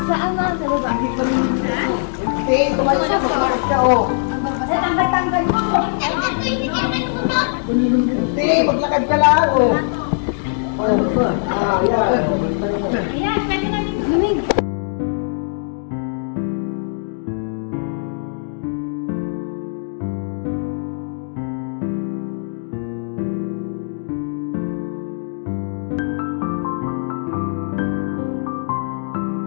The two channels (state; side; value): silent; right; digital silence